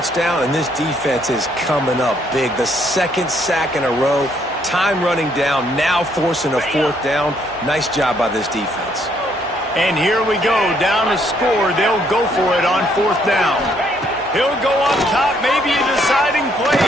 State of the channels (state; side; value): normal; both; correlation 0.69